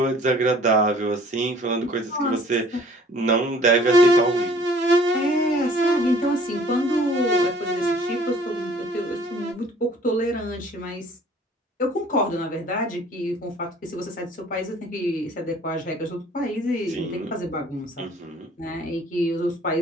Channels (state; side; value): normal; both; correlation 0.54